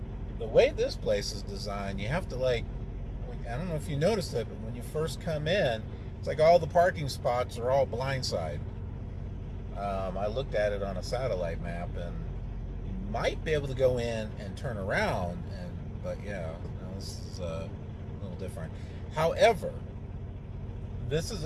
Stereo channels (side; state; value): both; identical; correlation 1.00